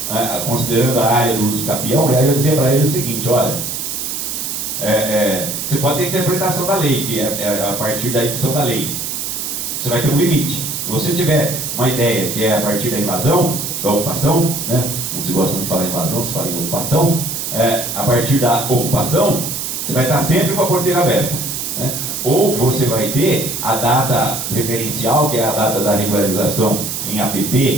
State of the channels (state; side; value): noise; right; hiss, 4 dB below the sound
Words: considerando a área do uso capião. E aí eu dizia para ele o seguinte: olha, você pode ter interpretação da lei, que é a partir da edição da lei. Você vai ter um limite. Se você tiver uma ideia que é a partir da invasão, da ocupação, né? Não se gosta muito de falar em invasão, se fala em ocupação, a partir da ocupação, você vai estar sempre com a porteira aberta, né? Ou você vai ter a data referencial, que é a data da regularização em